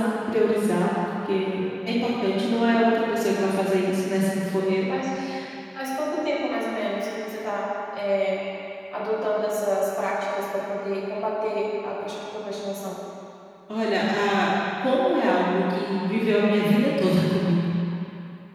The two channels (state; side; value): identical; both; correlation 1.00